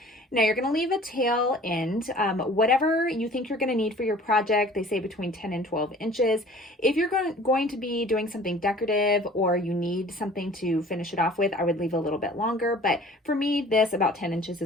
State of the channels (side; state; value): both; normal; correlation 0.48